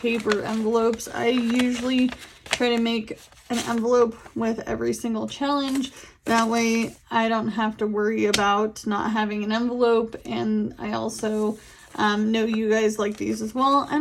envelopes. I usually try to make an envelope with every single challenge. That way I don't have to worry about not having an envelope. And I also know you guys like these as well. I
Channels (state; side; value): identical; both; correlation 1.00